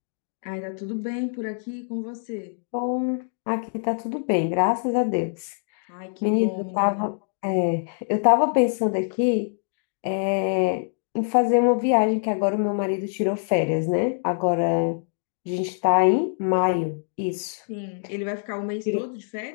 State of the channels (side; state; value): right; silent; digital silence